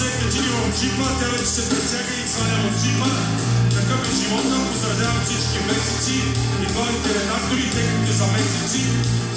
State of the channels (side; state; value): both; identical; correlation 1.00